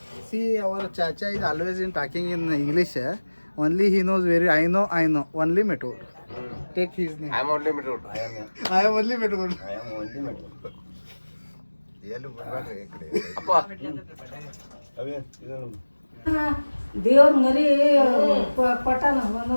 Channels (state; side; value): inverted; both; correlation -1.00